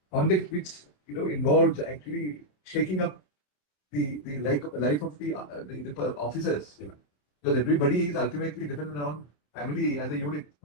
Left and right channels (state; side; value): late; right; 28 ms